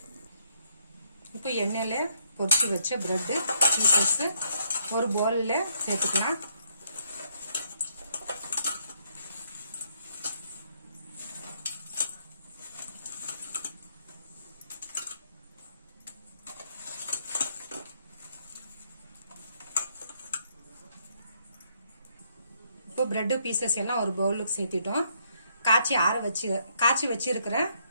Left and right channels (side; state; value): both; inverted; correlation -0.72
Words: இப்போ எண்ணெயில பொரிச்சு வச்ச பிரெட் பீசஸ் ஒரு பவுல்ல சேர்த்துக்கலாம். இப்போ பிரெட் பீசஸ் எல்லாம் ஒரு பவுலுக்கு சேர்த்திட்டோம். காய்ச்சி வச்சிருக்கிற